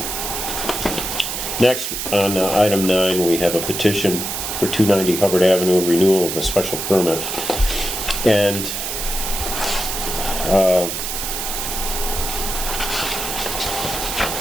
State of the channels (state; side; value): noise; right; hiss, 4 dB below the sound